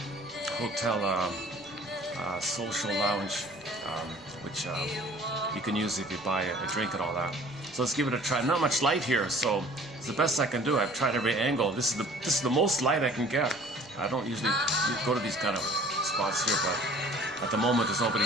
hotel social lounge, which you can use if you buy a drink and all that. So let's give it a try. Not much light here, so it's the best I can do. I've tried every angle. This is the most light I can get. I don't usually go to these kind of spots here, but at the moment there's nobody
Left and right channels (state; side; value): noise; right; rumble, 28 dB below the sound